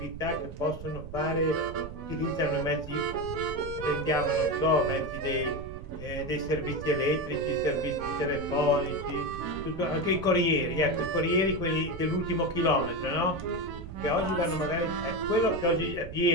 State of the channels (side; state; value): right; noise; rumble, 12 dB below the sound